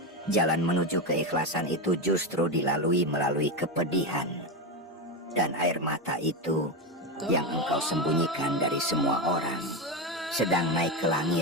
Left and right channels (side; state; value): both; normal; correlation 0.13